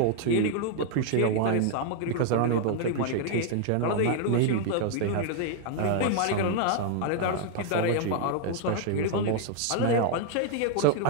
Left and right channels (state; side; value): different; both; correlation 0.00